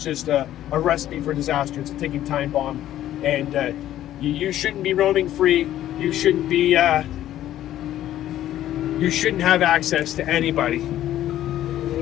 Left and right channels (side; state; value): right; quieter; 12.6 dB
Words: just a recipe for disaster. It's a ticking time bomb. And you shouldn't be roaming free. You shouldn't be. You shouldn't have access to anybody.